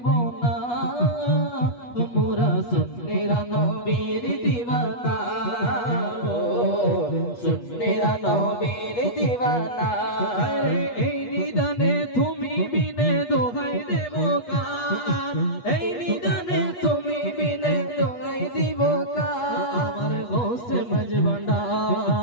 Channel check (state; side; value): late; right; 8.3 ms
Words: না, মোরা সুন্নিরা নবীর দিওয়ানা, ও সুন্নিরা নবীর দিওয়ানা। এই নিদানে তুমি বিনে দোহাই দেব কার, এই নিদানে তুমি বিনে দোহাই দিব কার। আমার গোসে